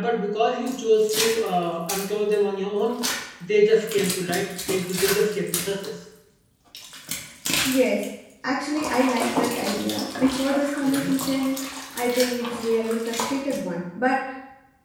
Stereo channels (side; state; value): both; identical; correlation 1.00